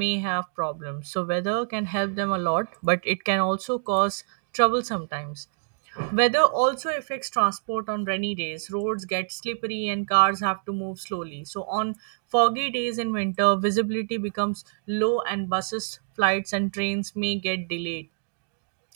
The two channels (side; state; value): left; silent; digital silence